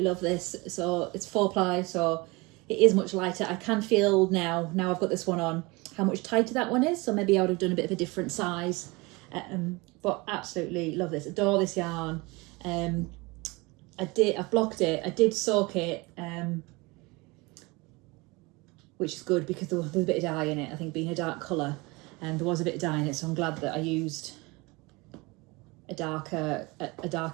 love this. So it's 4-ply, so it is much lighter. I can feel now I've got this one on, how much tighter that one is. So maybe I would have done a bit of a different size, but absolutely love this. Adore this yarn. I've blocked it. I did soak it, which is good because there was a bit of dye in it. I think being a dark colour, and there was a bit of dye in it, so I'm glad that I used a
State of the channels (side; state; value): left; quieter; 24.9 dB